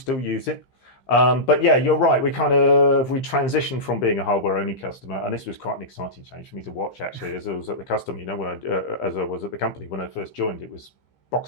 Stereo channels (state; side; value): late; right; 15 ms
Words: use it. But yeah, you're right. We transitioned from being a hardware-only customer, and this was quite an exciting change for me to watch, actually, as I was at the customer. As I was at the company when I first joined, it was